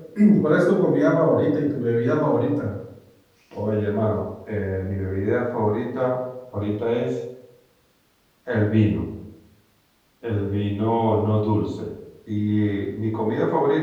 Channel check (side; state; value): both; identical; correlation 1.00